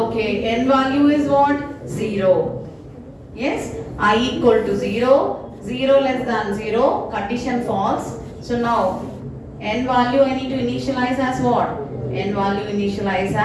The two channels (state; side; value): identical; both; correlation 1.00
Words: n value is what? 0. Yes, I equal to 0, 0 less than 0, condition false. So now, n value I need to initialize as what? N value initialize